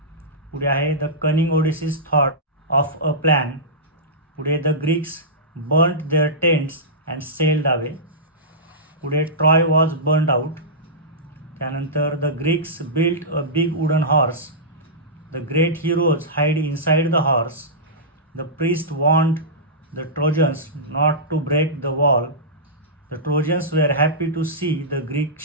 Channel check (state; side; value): normal; both; correlation -0.16